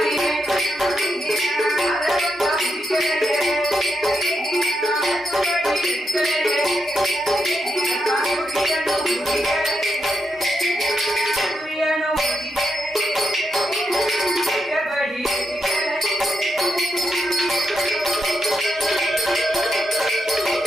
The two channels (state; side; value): normal; both; correlation 0.83